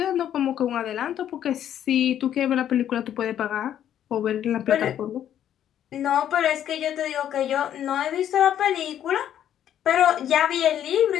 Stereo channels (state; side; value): quieter; right; 10.5 dB